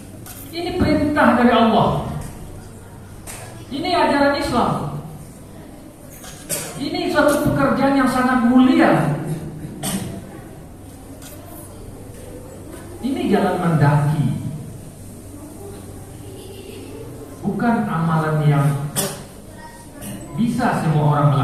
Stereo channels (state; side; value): identical; both; correlation 1.00